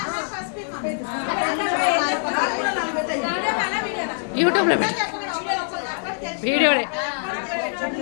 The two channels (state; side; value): silent; right; digital silence